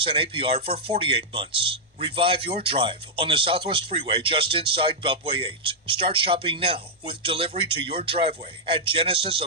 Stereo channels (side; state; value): both; normal; correlation -0.05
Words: for 48 months. Revive your drive on the Southwest Freeway just inside Beltway 8. Start shopping now with delivery to your driveway at